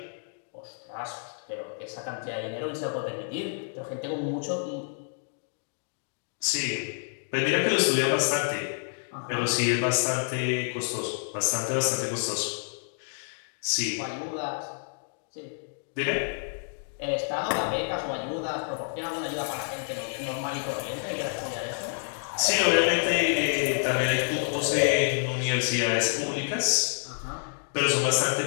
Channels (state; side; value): silent; right; digital silence